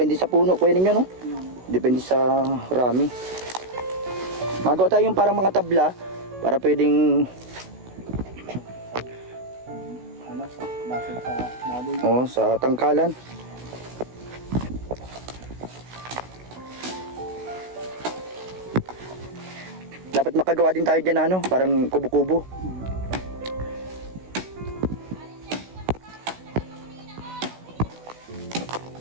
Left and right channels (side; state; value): left; late; 16 ms